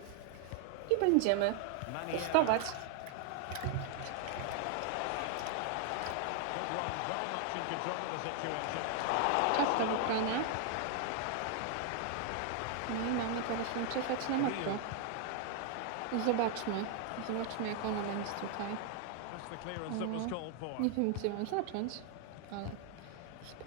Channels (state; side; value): different; both; correlation 0.00